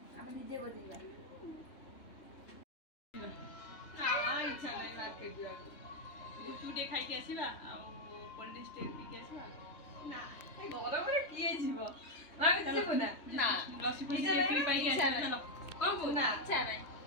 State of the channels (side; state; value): right; late; 3.2 ms